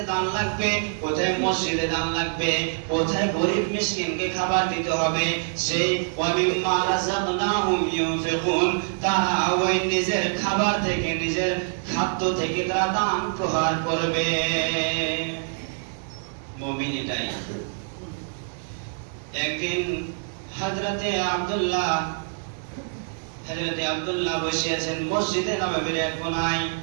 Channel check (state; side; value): silent; left; digital silence